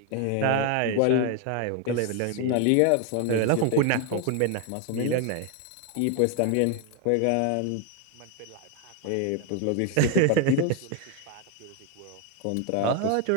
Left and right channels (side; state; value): both; different; correlation 0.01